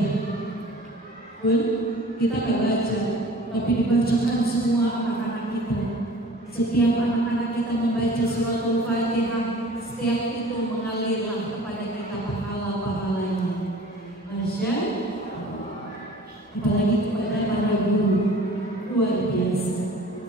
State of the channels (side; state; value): both; normal; correlation 0.45